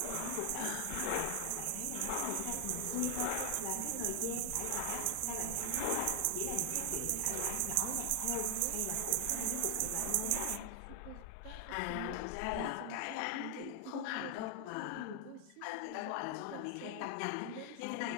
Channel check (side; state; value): both; different; correlation 0.00